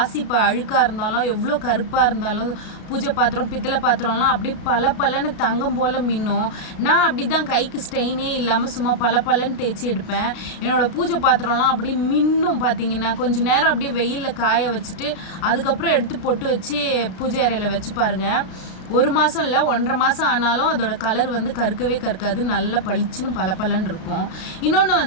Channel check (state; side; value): late; right; 33 ms